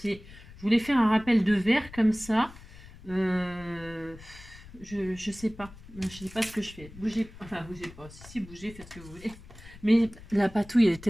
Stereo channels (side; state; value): left; noise; rumble, 18 dB below the sound